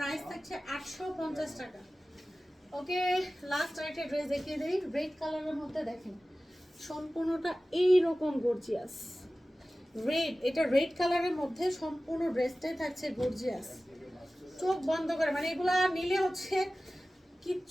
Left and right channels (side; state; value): both; normal; correlation 0.96